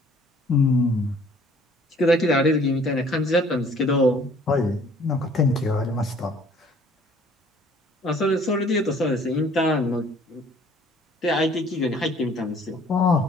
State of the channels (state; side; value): normal; both; correlation 0.56